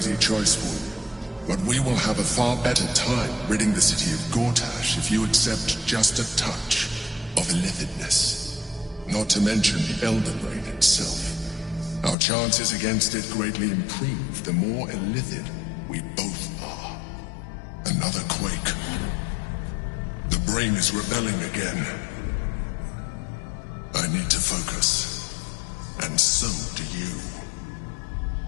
choice for you, but we will have a far better time ridding the city of Gortash if you accept just a touch of illithidness. Not to mention the Elden Ring itself. Our chances against it greatly improve the more illithid we both are. Another quake. The brain is rebelling again. I need to focus, and so do you.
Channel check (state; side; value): drops out; right; at 12.2 s